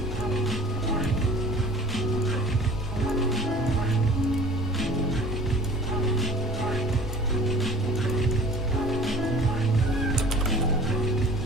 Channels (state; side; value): normal; both; correlation 0.46